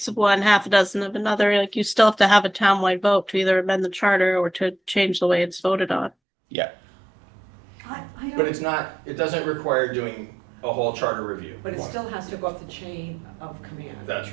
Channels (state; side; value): drops out; left; at 6.1 s